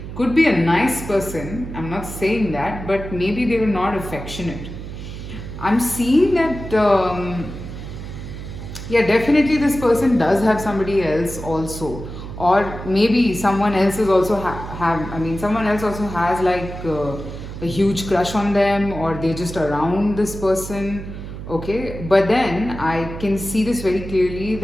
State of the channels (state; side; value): noise; right; hum, 10 dB below the sound